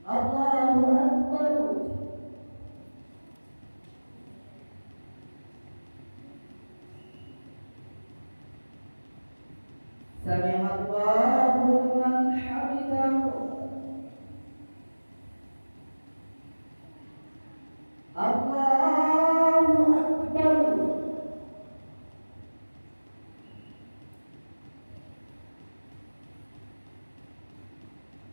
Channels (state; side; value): inverted; both; correlation -1.00